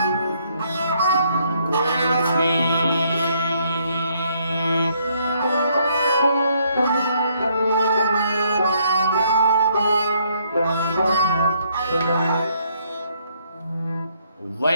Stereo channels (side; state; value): both; inverted; correlation -0.69